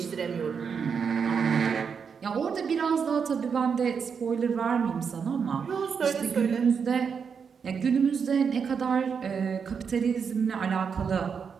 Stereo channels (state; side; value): quieter; left; 6.4 dB